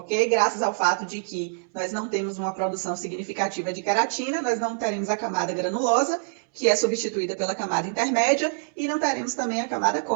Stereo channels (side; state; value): left; silent; 61 dB below the other